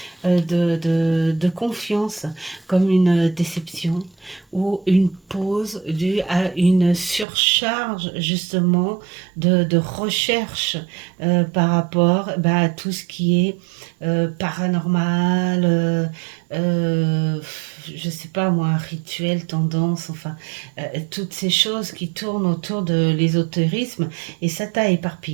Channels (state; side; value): drops out; left; at 7.2 s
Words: de confiance, comme une déception ou une pause due à une surcharge justement de recherche par rapport à tout ce qui est paranormal, je sais pas moi, rituel, tendance, enfin, toutes ces choses qui tournent autour de l'ésotérisme, et ça t'a